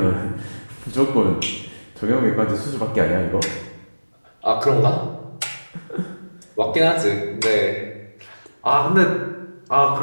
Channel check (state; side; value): inverted; both; correlation -1.00